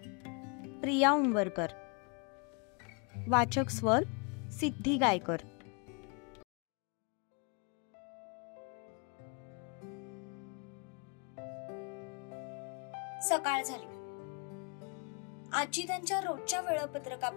प्रिया उंबरकर. वाचक स्वर सिद्धी गायकर. सकाळ झाली. आजी त्यांच्या रोजच्या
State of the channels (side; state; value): right; quieter; 33.7 dB